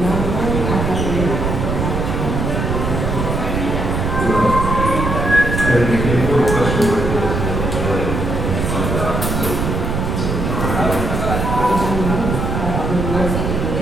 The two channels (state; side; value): noise; right; rumble, 1 dB below the sound